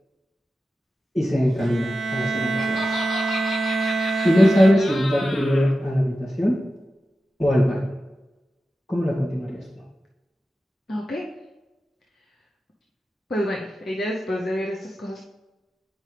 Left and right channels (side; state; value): both; normal; correlation 0.92